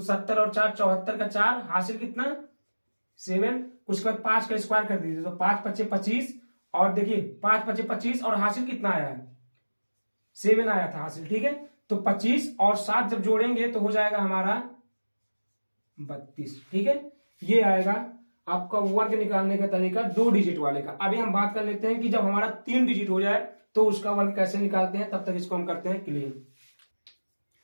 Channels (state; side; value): inverted; both; correlation -1.00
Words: 70 और 4 74 का 4 हासिल कितना 7, उसके बाद 5 का स्क्वायर कर दीजिए, तो 5 पचे 25 और देखिए 5 पचे 25 और हासिल कितना आया है 7 आया था हासिल, ठीक है। तो 25 और 7 जब जोड़ेंगे तो हो जाएगा हमारा 32, ठीक है। ये आएगा आपका वर्ग निकालने का तरीका 2 डिजिट वाले का। अभी हम बात कर लेते हैं कि जब हमारा 3 डिजिट हो जाए तो उसका वर्ग कैसे निकालते हैं, तब तक इसको हम करते हैं क्लियर।